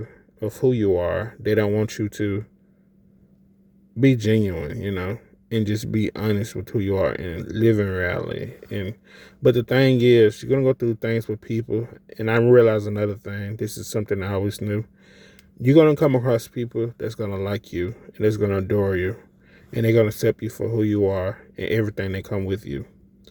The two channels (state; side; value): identical; both; correlation 1.00